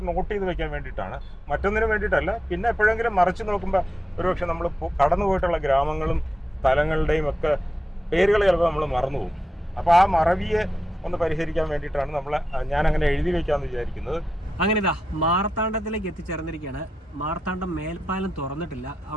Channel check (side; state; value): both; normal; correlation 0.88